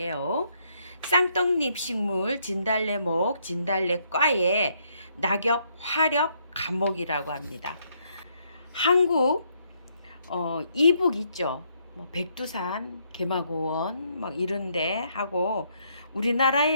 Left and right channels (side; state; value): both; inverted; correlation -0.72